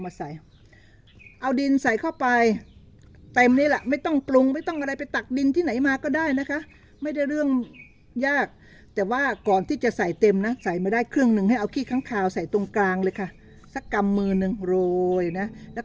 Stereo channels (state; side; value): identical; both; correlation 1.00